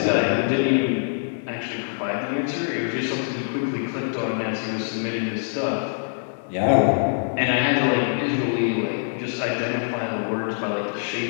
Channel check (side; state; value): right; silent; digital silence